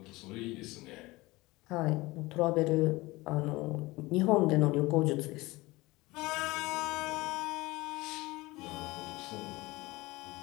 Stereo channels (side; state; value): right; quieter; 21.2 dB